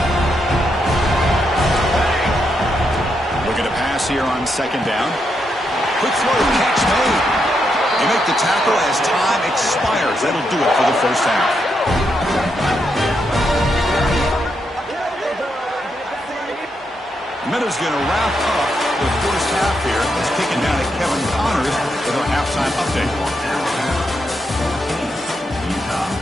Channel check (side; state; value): both; normal; correlation 0.81